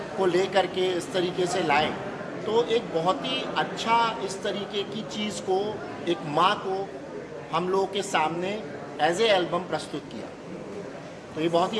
को ले करके इस तरीके से लाए, तो एक बहुत ही अच्छा इस तरीके की चीज़ को, एक माँ को हम लोगों के सामने एज ए एल्बम प्रस्तुत किया। तो ये बहुत ही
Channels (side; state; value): both; identical; correlation 1.00